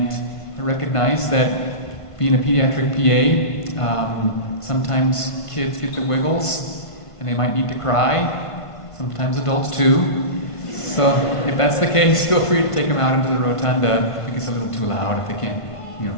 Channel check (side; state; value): right; late; 1.5 ms